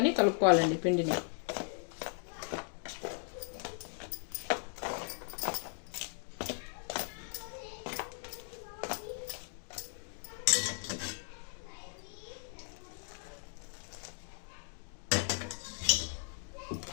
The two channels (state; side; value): silent; right; 53 dB below the other